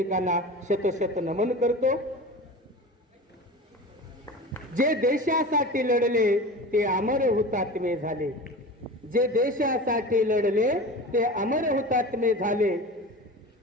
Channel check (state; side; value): normal; both; correlation 0.33